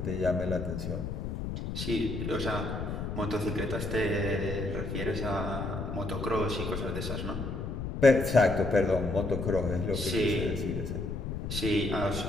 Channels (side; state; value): left; noise; rumble, 4 dB below the sound